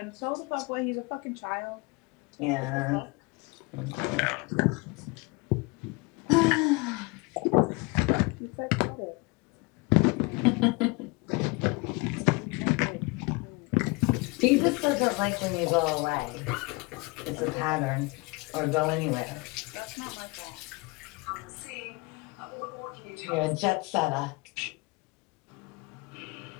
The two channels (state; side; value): quieter; right; 26.8 dB